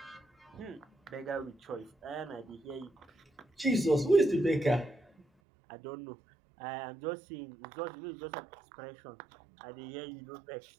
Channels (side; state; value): left; drops out; at 5.2 s